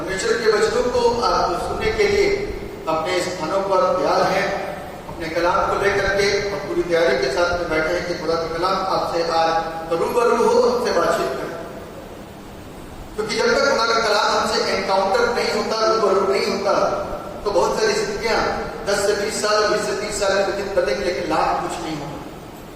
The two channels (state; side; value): identical; both; correlation 1.00